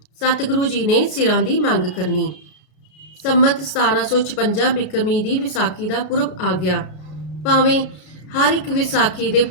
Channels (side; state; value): right; late; 33 ms